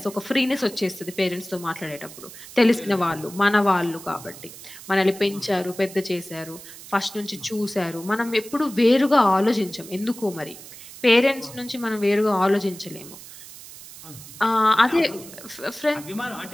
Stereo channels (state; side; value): noise; right; hiss, 16 dB below the sound